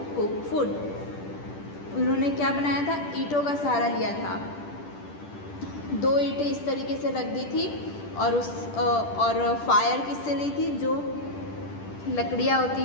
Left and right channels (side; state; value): right; late; 10 ms